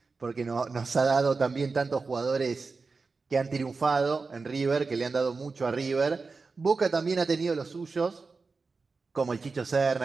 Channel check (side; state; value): left; quieter; 4.3 dB